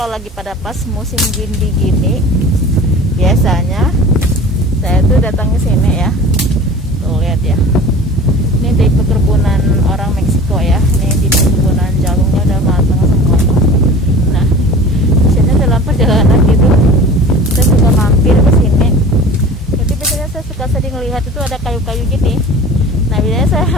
kalau lagi pada pas musim gini biasanya saya tuh datang ke sini ya. Tuh lihat ya. Ini di perkebunan orang Meksiko ya. Ini di perkebunan jalungnya udah matang semua. Nah, biasanya dalam perjalanan gitu saya suka mampir ke sini. Jadi biasanya saya suka sering lihat itu ada kayu-kayu gini. Nah, biasanya saya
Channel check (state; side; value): normal; both; correlation 0.40